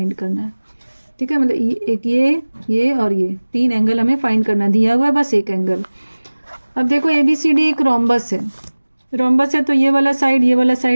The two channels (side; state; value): both; inverted; correlation -1.00